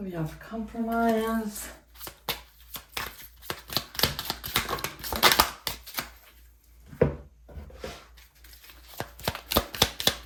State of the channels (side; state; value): both; identical; correlation 1.00